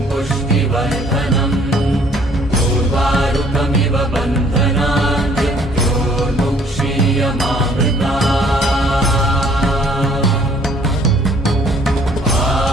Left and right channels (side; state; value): both; normal; correlation 0.60